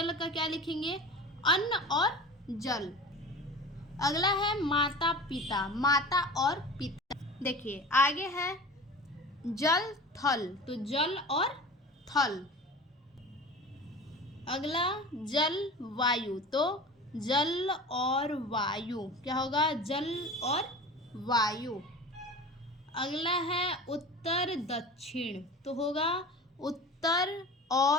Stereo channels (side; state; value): both; normal; correlation 0.36